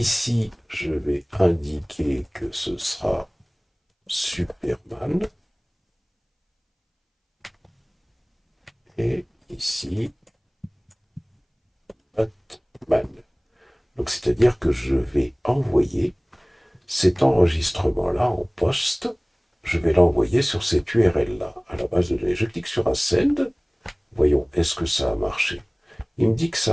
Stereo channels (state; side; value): identical; both; correlation 1.00